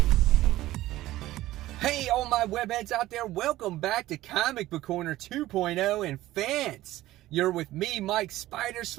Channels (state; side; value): quieter; left; 15.8 dB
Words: Hey, all my webheads out there, welcome back to Comic Book Corner 2.0 and fans. You're with me, Mike Spider